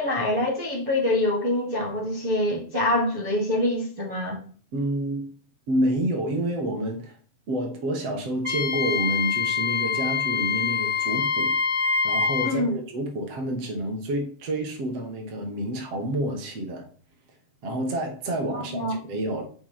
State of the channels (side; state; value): left; late; 7.6 ms